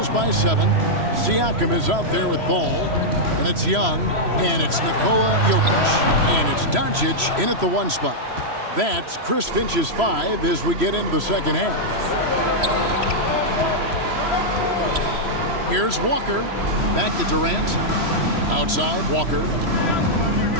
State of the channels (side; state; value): left; late; 3.0 ms